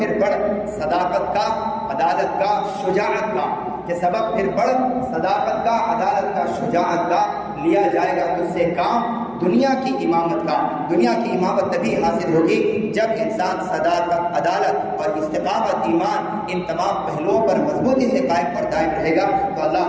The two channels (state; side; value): identical; both; correlation 1.00